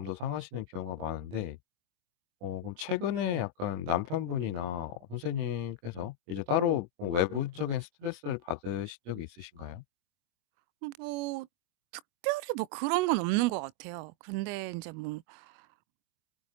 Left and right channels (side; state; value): left; late; 25 ms